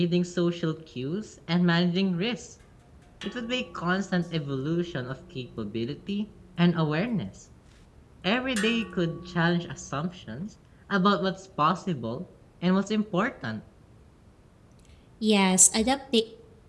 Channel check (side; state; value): both; identical; correlation 1.00